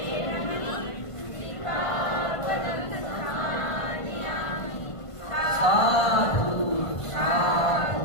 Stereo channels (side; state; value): right; late; 1.5 ms